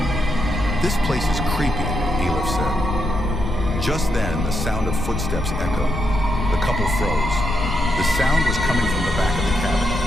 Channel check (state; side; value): noise; left; rumble, 5 dB below the sound